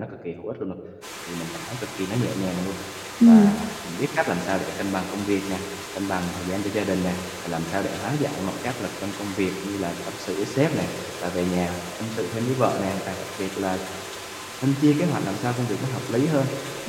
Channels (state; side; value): identical; both; correlation 1.00